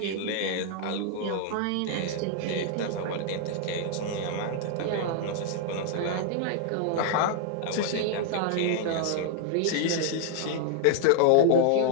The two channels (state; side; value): different; both; correlation 0.00